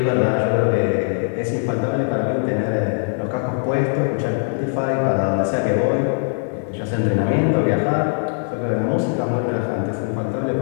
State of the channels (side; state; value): right; silent; 57 dB below the other